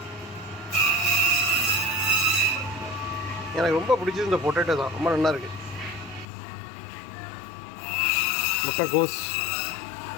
எனக்கு ரொம்ப பிடிச்சது இந்த பொட்டேட்டோ தான், ரொம்ப நல்லா இருக்கு. முட்டைக்கோஸ்,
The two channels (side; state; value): right; drops out; at 6.2 s